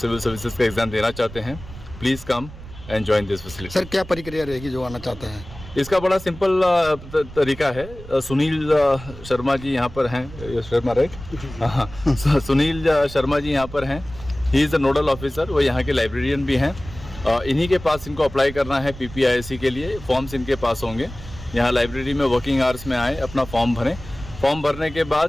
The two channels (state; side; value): noise; right; rumble, 15 dB below the sound